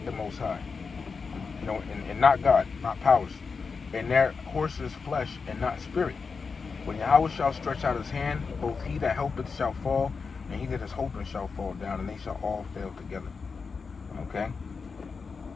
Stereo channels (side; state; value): right; quieter; 5.0 dB